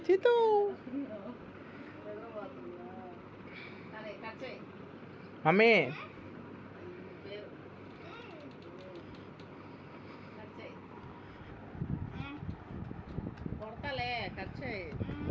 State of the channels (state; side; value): identical; both; correlation 1.00